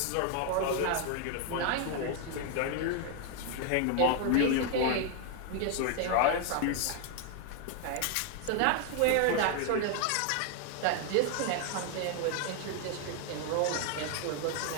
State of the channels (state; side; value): different; both; correlation 0.00